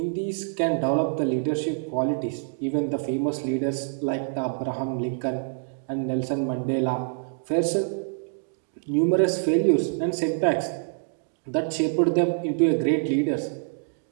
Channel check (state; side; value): silent; left; digital silence